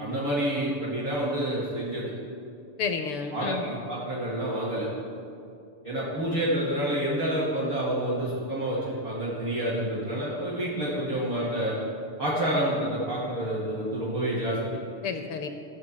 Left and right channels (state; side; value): late; right; 6.8 ms